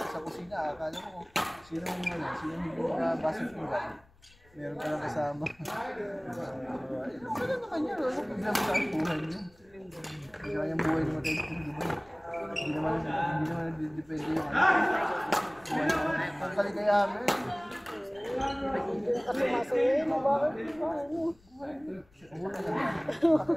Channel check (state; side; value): noise; left; rumble, 29 dB below the sound